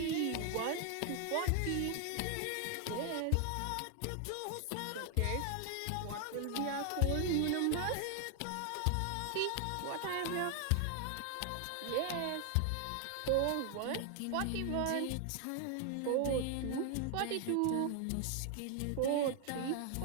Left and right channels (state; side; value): different; both; correlation 0.00